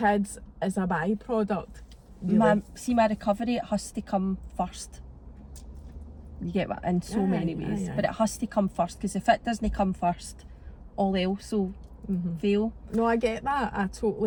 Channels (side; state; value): both; identical; correlation 1.00